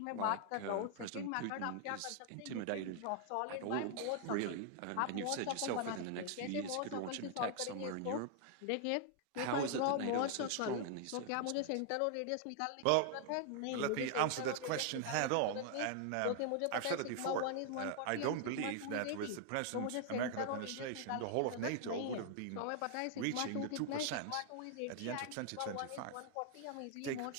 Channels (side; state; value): both; different; correlation 0.00